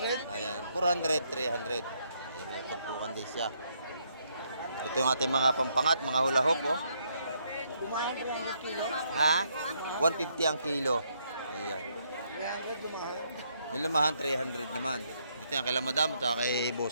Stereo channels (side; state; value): both; inverted; correlation -0.73